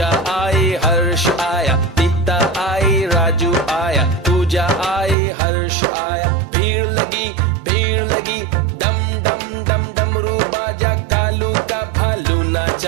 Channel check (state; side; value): drops out; left; at 5.2 s